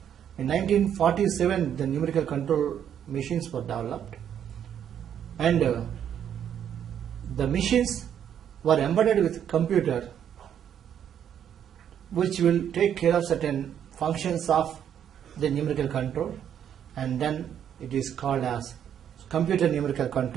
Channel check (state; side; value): quieter; left; 9.3 dB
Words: In 1947, the numerical control machines were developed, and the machines were embedded with computer, which will take care of certain functions of the numerical control, and then it is called as computer numerical